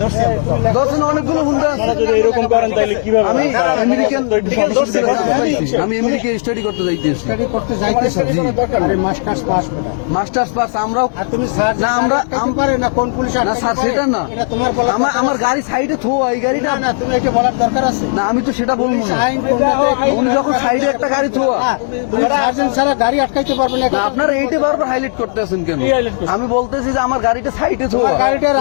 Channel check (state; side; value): silent; right; digital silence